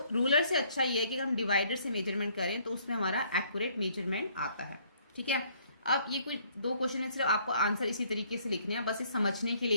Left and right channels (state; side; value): inverted; both; correlation -0.63